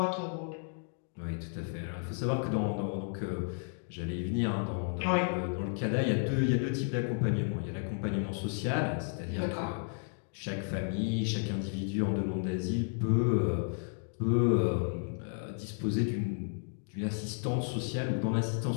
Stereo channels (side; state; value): right; silent; 56 dB below the other